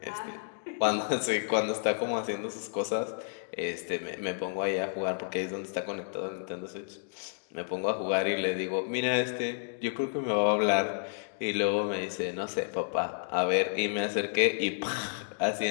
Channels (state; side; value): silent; right; digital silence